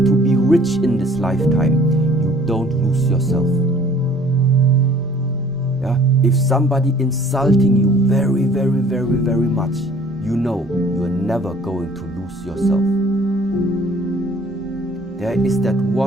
to be rich in this lifetime, you don't lose yourself. Yeah? If somebody insulting you very, very, very, very much, you know you are never going to lose yourself. There is that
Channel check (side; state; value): both; normal; correlation 0.54